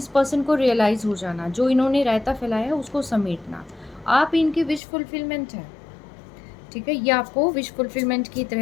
पर्सन को रियलाइज़ हो जाना, जो इन्होंने रायता फैलाया है उसको समेटना। आप इनकी विश फुलफिलमेंट है। ठीक है, ये आपको विश फुलफिलमेंट की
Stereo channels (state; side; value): drops out; right; at 4.8 s